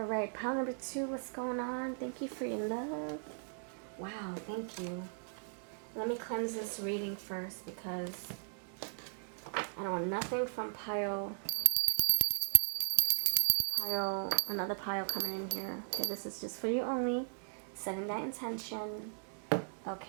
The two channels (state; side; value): silent; left; digital silence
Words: right, pile number 2, what's going on? Thank you for your love. Wow, thank you. Let me cleanse this reading first because I don't want nothing from another pile coming in here. Okay, this is just for you only. Setting that intention.